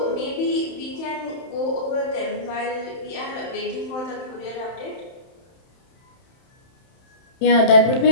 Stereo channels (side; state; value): right; late; 31 ms